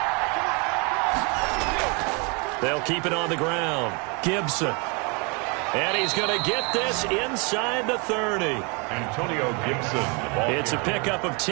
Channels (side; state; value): left; quieter; 32.0 dB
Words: They'll keep it on the ground. Gibson. And he's going to get this inside the 30. Antonio Gibson. It's a pickup of